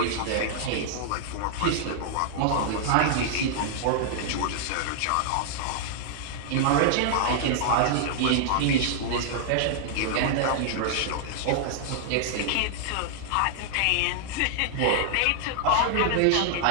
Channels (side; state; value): both; different; correlation -0.01